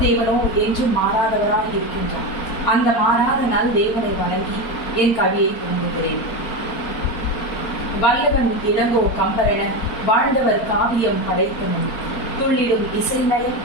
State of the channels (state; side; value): late; right; 4.4 ms